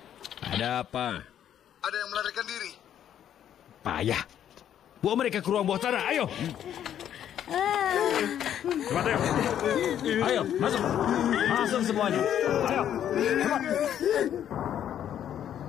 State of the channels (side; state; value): right; quieter; 10.2 dB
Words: Ada apa? Ada yang melarikan diri. Payah. Bawa mereka ke ruang bawah tanah. Ayo. Cepat, ayo. Ayo, masuk. Masuk semuanya. Ayo. Cepat.